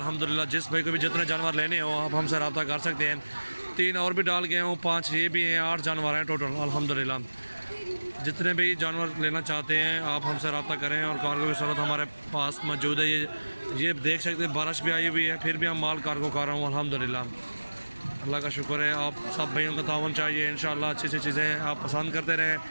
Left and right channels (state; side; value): inverted; both; correlation -1.00